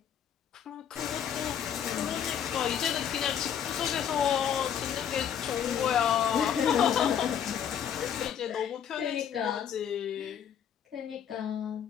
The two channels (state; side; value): quieter; right; 8.9 dB